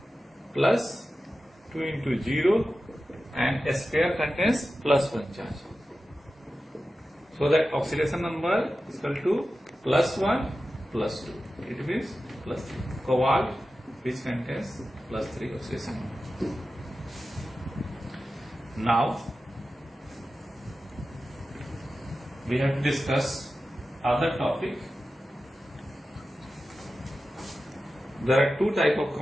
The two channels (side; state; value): both; normal; correlation 0.93